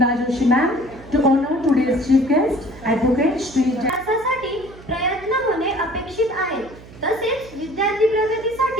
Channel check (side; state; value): right; noise; hum, 19 dB below the sound